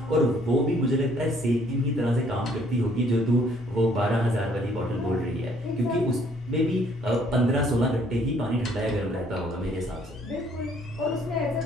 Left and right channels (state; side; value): normal; both; correlation 0.63